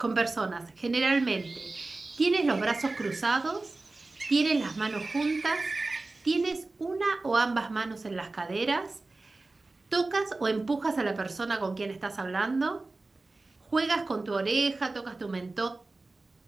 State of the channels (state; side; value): quieter; left; 3.3 dB